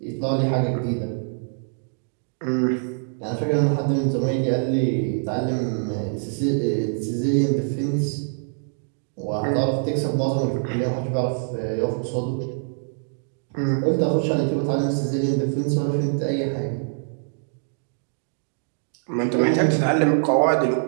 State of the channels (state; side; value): silent; left; digital silence